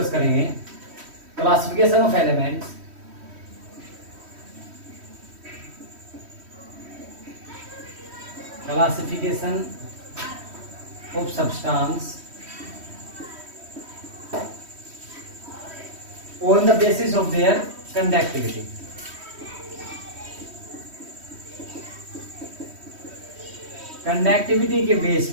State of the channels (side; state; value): left; late; 3.1 ms